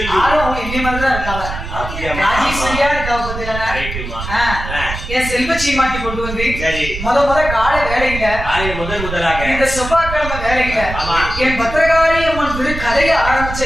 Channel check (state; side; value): noise; right; rumble, 7 dB below the sound